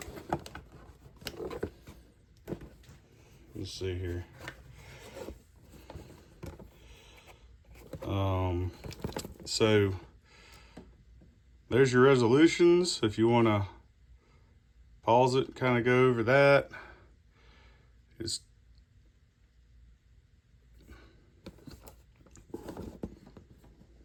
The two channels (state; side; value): identical; both; correlation 1.00